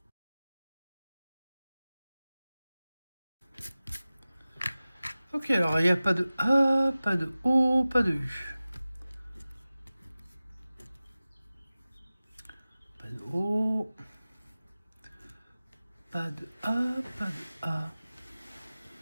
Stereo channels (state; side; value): inverted; both; correlation -0.97